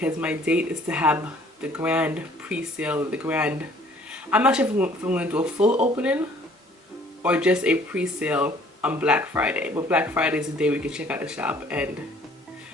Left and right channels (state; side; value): normal; both; correlation 0.57